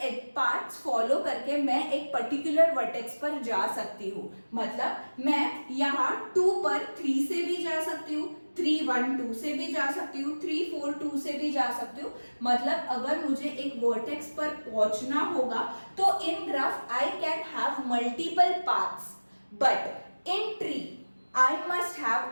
पाथ्स फॉलो करके मैं एक पर्टिकुलर वर्टेक्स पर जा सकती हूँ. मतलब मैं यहाँ 2 पर 3 से भी जा सकती हूँ, 3 1 2 से भी जा सकती हूँ, 3 4 2 से भी जा सकती हूँ. मतलब अगर मुझे एक वर्टेक्स पर पहुंचना होगा तो in graph I can have multiple paths, but in tree I must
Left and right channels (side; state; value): both; inverted; correlation -1.00